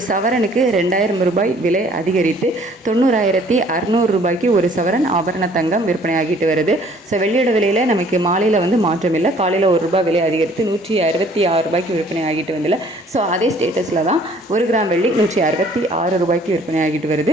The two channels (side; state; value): both; normal; correlation 0.57